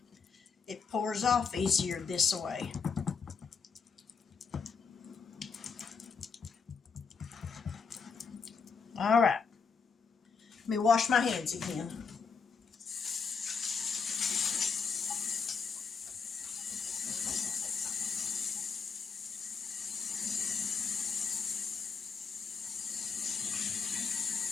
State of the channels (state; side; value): quieter; right; 5.6 dB